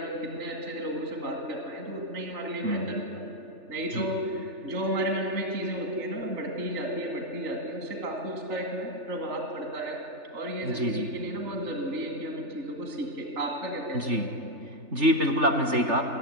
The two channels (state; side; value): late; left; 3.4 ms